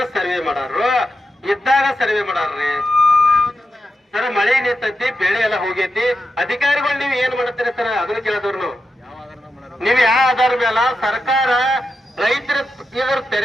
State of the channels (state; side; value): normal; both; correlation 0.88